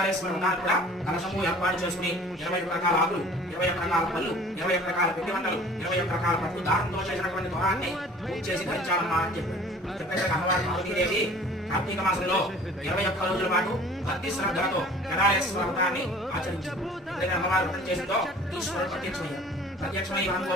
వ్రతాన్ని కూడా కలశము ఏర్పాటు చేసుకుని 21 రకాల ఆకులు, 21 రకాల పళ్ళు, 21 రకాల పిండి వంటలు, 21 రకాల పట్టు దారంతో చేసినటువంటి దొరాన్ని పూజ చేసి ధరించాలమ్మా అని చెప్పారు. చెప్పేసి అమ్మవారి పార్వతీదేవి కార్తీక మాసంలో 21 రోజుల పాటు భక్తి శ్రద్ధలతో కేదారేశ్వర వ్రతాన్ని ఆచరించారు. ఎందుకంటే అమ్మవారు వ్రతం చేసిందో ఈశ్వరుడు ప్రత్యక్షమై మనం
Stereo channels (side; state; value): both; normal; correlation 0.48